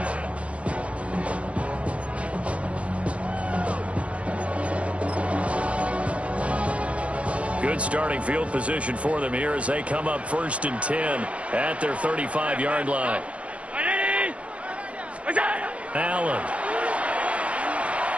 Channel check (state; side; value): late; left; 0.063 ms